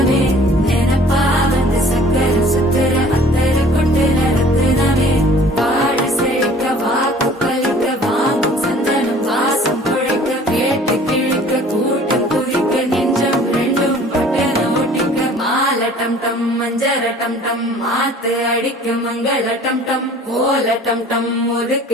நினைப்பா வந்து சக்கர சுத்திர அத்தர கொண்டு நடத்துனவே வாழ செழிக்க வாக்கு பலிக்க வாங்கும் சந்தனம் வாசம் குழைக்க கேட்டு கிழிக்க கூட்டம் குதிக்க நெஞ்சம் ரெண்டும் பட்டன ஒட்டிக்க மால டம் டம் மஞ்சர டம் டம் மாத்து அடிக்க மங்கள டம் டம் கோல டம் டம்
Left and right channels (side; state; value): both; normal; correlation 0.51